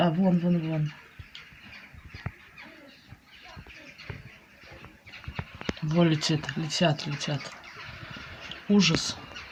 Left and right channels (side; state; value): both; identical; correlation 1.00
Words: А, вон, вон, вон. Вон летит, летят, летят. Ужас.